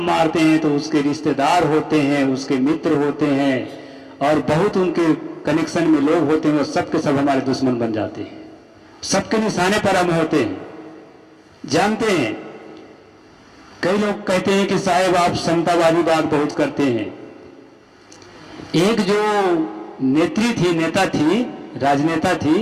मारते हैं तो उसके रिश्तेदार होते हैं, उसके मित्र होते हैं, और बहुत उनके कनेक्शन में लोग होते हैं, वो सबके सब हमारे दुश्मन बन जाते हैं, सबके निशाने पर हम होते हैं। जानते हैं, कई लोग कहते हैं कि साहब आप समतावादी बात बहुत करते हैं। एक जो नेत्री थी, नेता थी, राजनेता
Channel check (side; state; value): both; identical; correlation 1.00